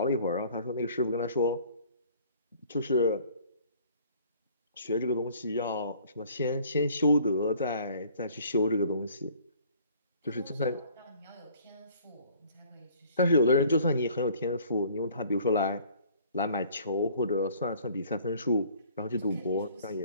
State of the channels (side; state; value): both; inverted; correlation -0.55